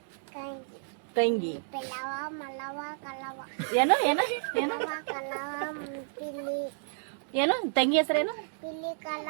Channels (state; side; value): silent; left; 57 dB below the other